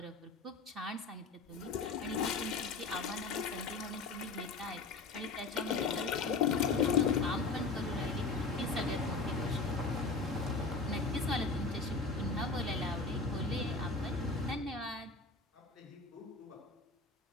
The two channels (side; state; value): right; quieter; 3.8 dB